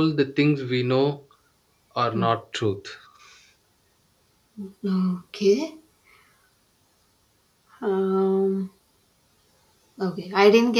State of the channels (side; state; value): both; identical; correlation 1.00